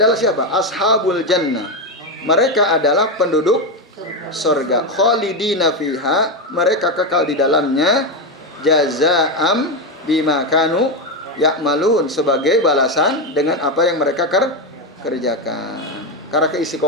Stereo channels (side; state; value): both; normal; correlation 0.10